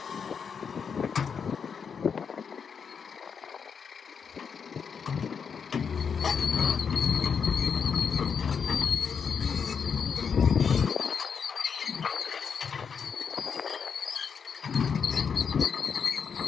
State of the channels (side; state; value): right; quieter; 6.5 dB